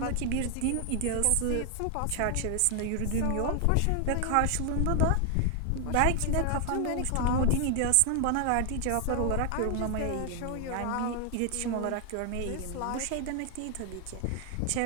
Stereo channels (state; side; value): different; both; correlation 0.00